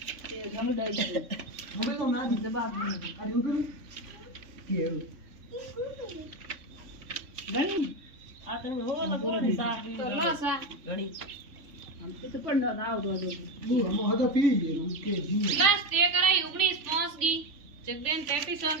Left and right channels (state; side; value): late; left; 3.5 ms